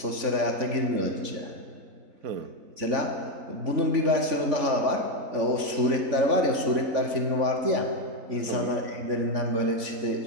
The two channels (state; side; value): late; left; 3.5 ms